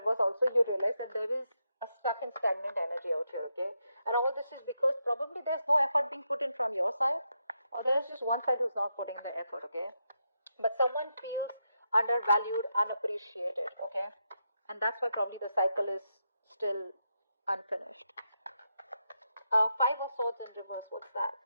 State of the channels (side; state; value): both; inverted; correlation -0.83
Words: also you realize that there is a stuck and stagnant energy out here, okay? And all this is because probably there's no effort being put in from your side, or there's just one side who's not putting the effort, okay? But someone feels undervalued, unappreciated, okay? And that's why probably the cycle is still unfinished. Five of Swords in reverse, what's that?